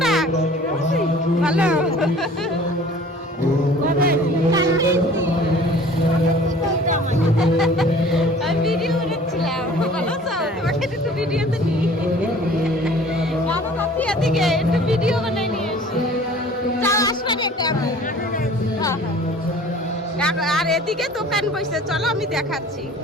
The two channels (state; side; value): normal; both; correlation 0.48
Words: ভালো। ভিডিও করেছিলাম, ভালো আছো? তোমাকে একটু ভিডিওতে নিই, বাবা কাকি এদিকে একটু ভিডিও বানাই নিয়ে এসি। যাও আসবে একটা। আর এদিকে দোকান বসে, চলো আমি দেখাচ্ছি।